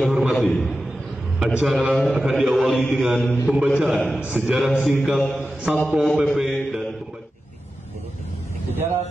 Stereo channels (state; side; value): normal; both; correlation 0.93